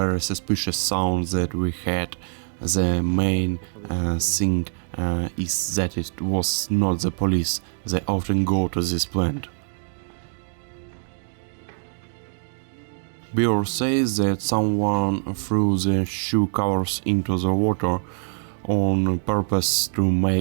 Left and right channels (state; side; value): silent; left; digital silence